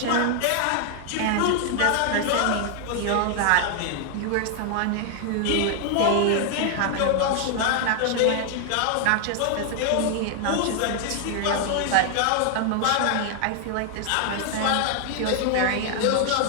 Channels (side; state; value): both; different; correlation 0.00